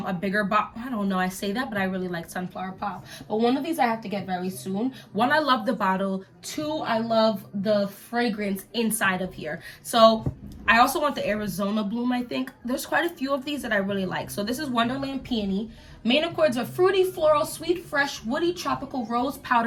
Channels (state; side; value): identical; both; correlation 1.00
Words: bigger box. I don't know, I say that, but I really like Sunflower Pop. But one of these I have to get very soon. One, I love the bottle. Two, I love the fragrance inside of here. So I also want the Arizona Bloom, I think. There's quite a few of these that I really like. So this is Wonderland Peony. Main accords are fruity, floral, sweet, fresh, woody, tropical, rose,